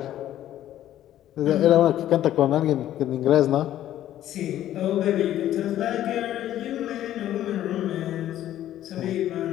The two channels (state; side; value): quieter; right; 12.4 dB